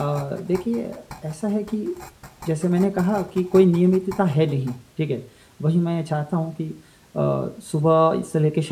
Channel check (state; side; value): identical; both; correlation 1.00